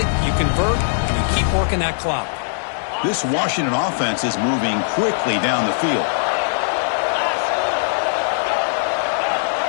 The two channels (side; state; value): right; silent; digital silence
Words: You convert, and you keep working that clock. This Washington offense is moving quickly down the field.